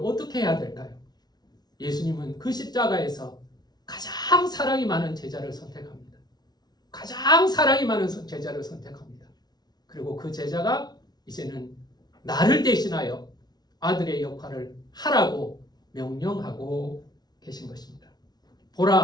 해야 될까요? 예수님은 그 십자가에서 가장 사랑이 많은 제자를 선택합니다. 가장 사랑이 많은 제자를 선택합니다. 그리고 그 제자가 이제는 나를 대신하여 아들의 역할을 하라고 명령하고 계신 것입니다.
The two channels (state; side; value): late; right; 0.19 ms